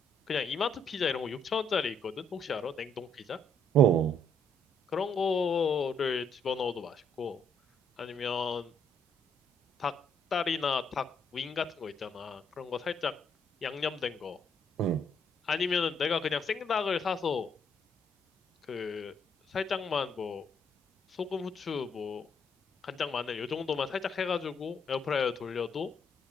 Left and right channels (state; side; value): normal; both; correlation 0.70